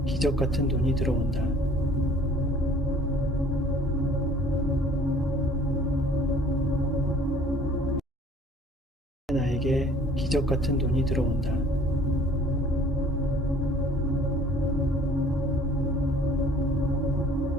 기적 같은 돈이 들어온다. 나에게 기적 같은 돈이 들어온다.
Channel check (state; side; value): normal; both; correlation 0.52